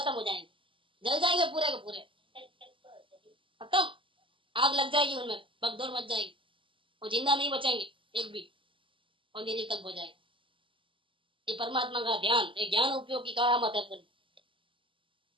हो जाएंगे, जल जाएंगे पूरे के पूरे, खत्म। आग लग जाएगी उनमें, भगदौड़ मच जाएगी, वो जिंदा नहीं बचेंगे। एक भी, और निरीक्षक हो जाए। ये परमात्मा का ध्यान, ये ज्ञान उपयोग की करामत है पूरी।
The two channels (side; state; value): left; late; 0.25 ms